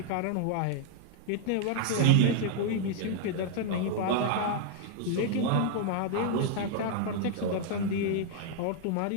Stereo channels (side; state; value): both; different; correlation 0.00